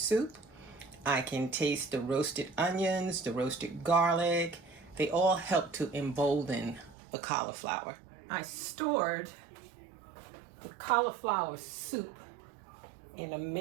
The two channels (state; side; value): drops out; left; at 7.0 s